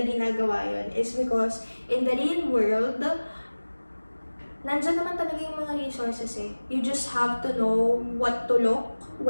ginagawa yun, is because in the real world, nandyan naman talaga yung mga resources eh. You just have to know what to look,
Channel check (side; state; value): both; inverted; correlation -1.00